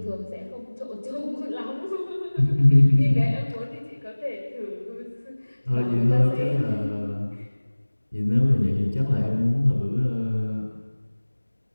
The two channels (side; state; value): both; inverted; correlation -1.00